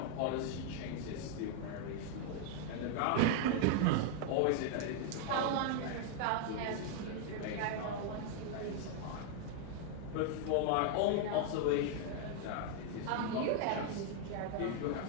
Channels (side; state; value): both; different; correlation 0.00